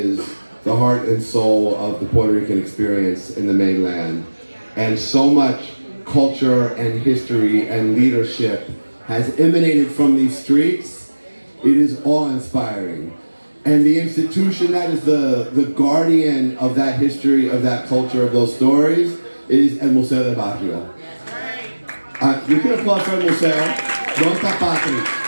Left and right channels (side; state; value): both; inverted; correlation -1.00